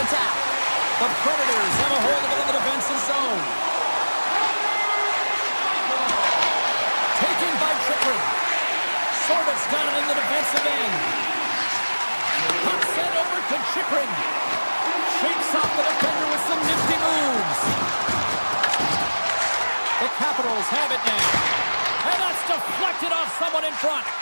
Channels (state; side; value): inverted; both; correlation -1.00